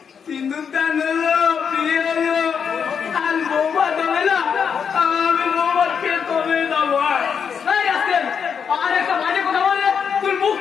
সিন্দুর দান হলো, বিয়ে হলো, আর বৌমা দেবে না, আমি বৌমাকে কবে দেবো? এই আসেন, আর একটা বাজে কথা বলে তুই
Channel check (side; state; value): right; quieter; 6.9 dB